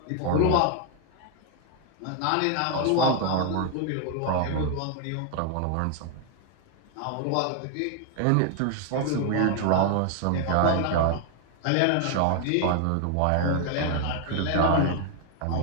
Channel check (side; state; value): both; different; correlation 0.00